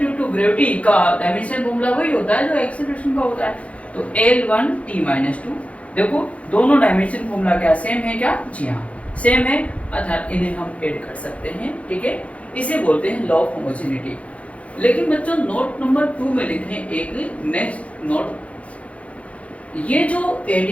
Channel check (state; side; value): late; right; 0.064 ms